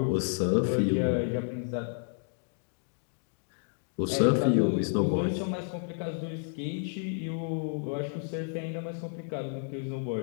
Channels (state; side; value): silent; right; 57 dB below the other